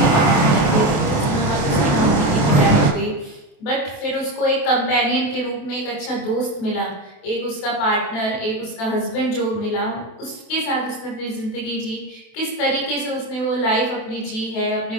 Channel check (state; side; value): late; right; 28 ms